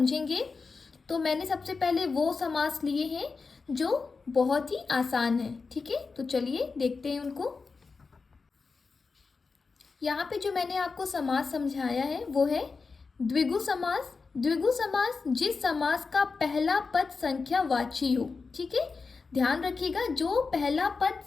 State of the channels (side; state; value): right; quieter; 4.5 dB